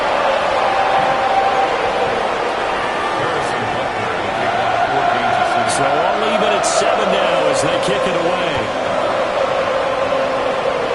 So all even at 7 now as they kick it away.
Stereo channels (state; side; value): identical; both; correlation 1.00